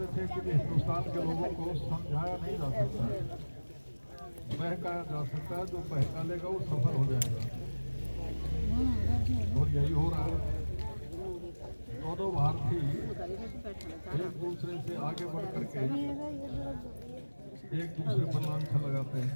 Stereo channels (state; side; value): inverted; both; correlation -1.00